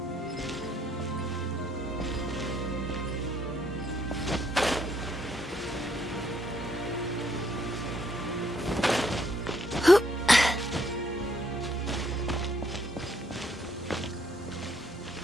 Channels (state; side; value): normal; both; correlation 0.70